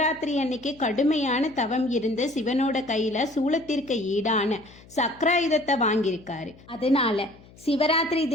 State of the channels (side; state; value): left; noise; hum, 24 dB below the sound